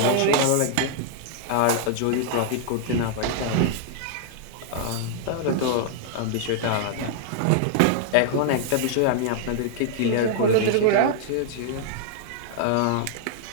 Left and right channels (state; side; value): different; both; correlation -0.01